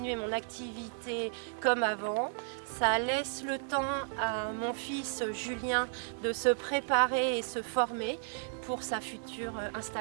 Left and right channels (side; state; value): left; silent; digital silence